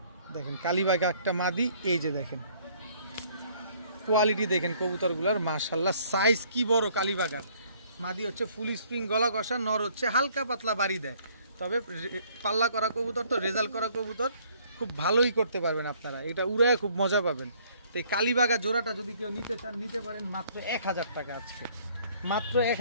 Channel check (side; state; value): both; inverted; correlation -0.60